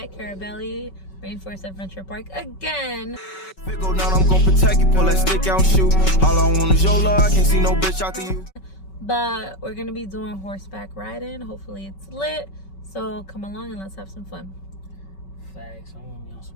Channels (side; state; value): right; late; 5.3 ms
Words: Carabali Rainforest Adventure Park again. If it go down, I'm gonna protect you, pull that stick out and shoot. All I want is your love, I can't see no bitch after you. But we're gonna be doing horseback riding. Hopefully it's lit. So come along and let's have some fun. Facts, I want to be on